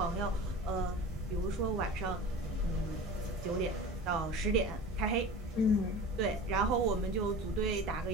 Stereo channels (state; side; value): normal; both; correlation 0.35